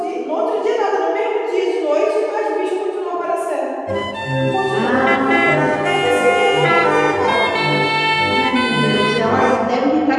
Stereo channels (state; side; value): identical; both; correlation 1.00